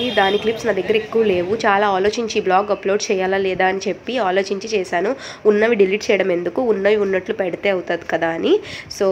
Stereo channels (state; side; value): identical; both; correlation 1.00